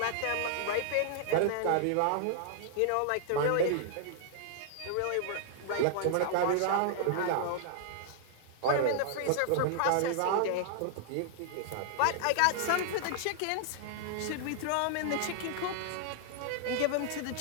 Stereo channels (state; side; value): different; both; correlation -0.01